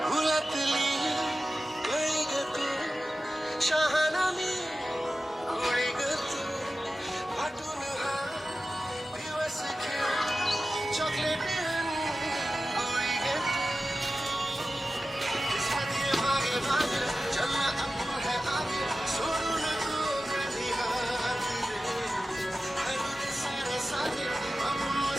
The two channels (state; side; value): normal; both; correlation 0.94